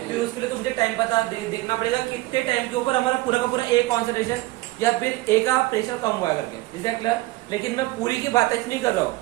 फिर उसके लिए तो मुझे टाइम पता देखना पड़ेगा कितने टाइम के ऊपर हमारा पूरा का पूरा ए कॉन्सेंट्रेशन या फिर ए का प्रेशर कम हुआ करके। Is that clear? लेकिन मैं पूरी की बात नहीं कर रहा हूँ,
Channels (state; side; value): quieter; left; 19.8 dB